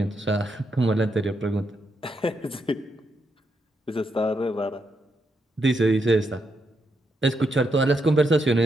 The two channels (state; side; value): normal; both; correlation 0.81